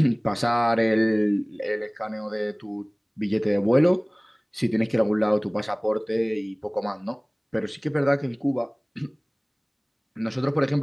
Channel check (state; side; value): identical; both; correlation 1.00